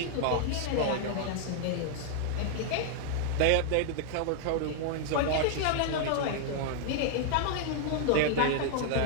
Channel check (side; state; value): both; different; correlation 0.00